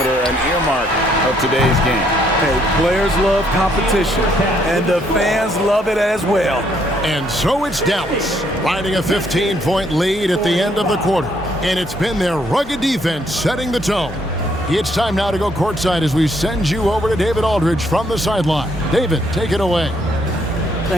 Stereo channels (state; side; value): normal; both; correlation 0.70